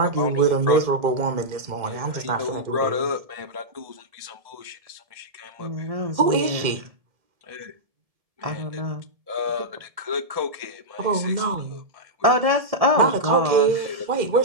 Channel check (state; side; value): late; left; 1.7 ms